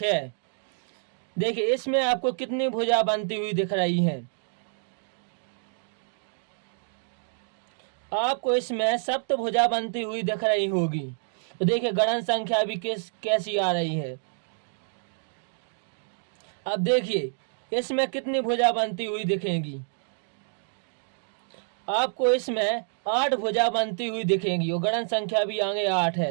देखिए इसमें आपको कितनी भुजा बनती हुई दिख रही हैं। आपको इसमें सप्तभुजा बनती हुई दिख रही होगी। तो देखिए गणन संख्या भी कैसी आ रही है। अब देखिए इसमें कितनी भुजा बनती हुई दिखेंगी। आपको इसमें 8 भुजा बनती हुई दिखेंगी और गणन संख्या भी आगे 8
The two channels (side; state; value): left; silent; digital silence